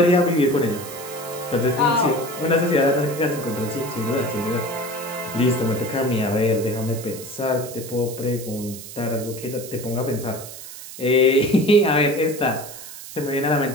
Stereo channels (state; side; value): noise; right; hiss, 13 dB below the sound